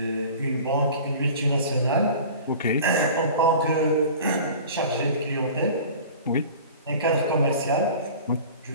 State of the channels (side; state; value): both; inverted; correlation -0.40